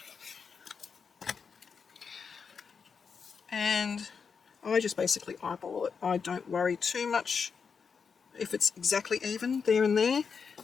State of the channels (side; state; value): right; quieter; 5.9 dB